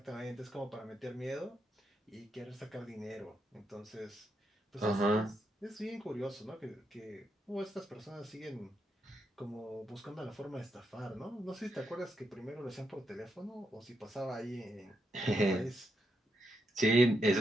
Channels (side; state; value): both; normal; correlation 0.82